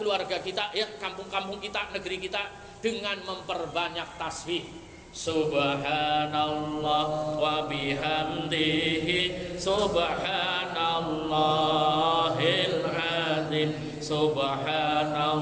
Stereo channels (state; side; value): identical; both; correlation 1.00